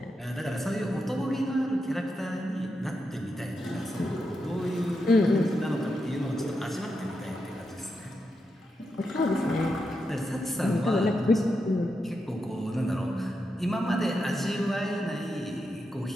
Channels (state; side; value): normal; both; correlation 0.86